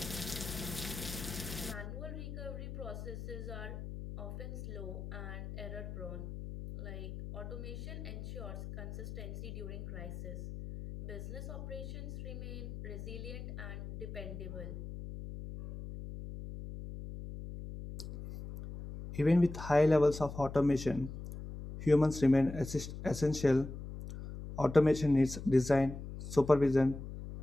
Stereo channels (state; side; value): noise; left; hum, 9 dB below the sound